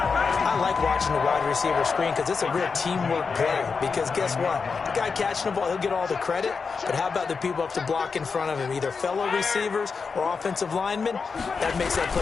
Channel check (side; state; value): right; quieter; 5.1 dB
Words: like watching the wide receiver screen, because it's a real teamwork play. Because guess what? The guy catching the ball, he'll get all the credit. But how about the people up to block in front of him, either fellow receivers or offensive linemen? That makes that